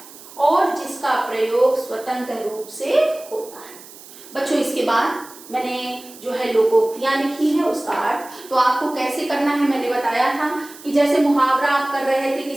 और जिसका प्रयोग स्वतंत्र रूप से होता है। बच्चों, इसके बाद मैंने जो है लोकोक्तियां लिखी है उसका अर्थ तो आपको कैसे करना है मैंने बताया था कि कि जैसे मुहावरा आप कर रहे थे कि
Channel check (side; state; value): right; noise; hiss, 19 dB below the sound